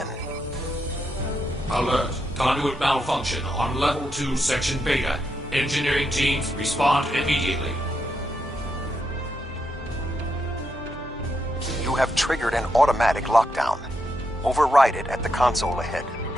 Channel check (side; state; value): both; normal; correlation 0.82